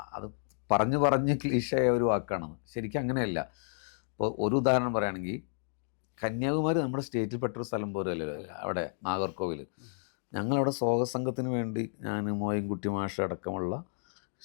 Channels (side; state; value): right; silent; digital silence